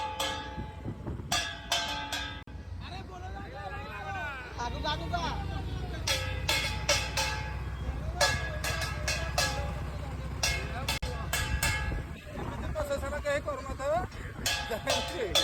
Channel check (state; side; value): identical; both; correlation 1.00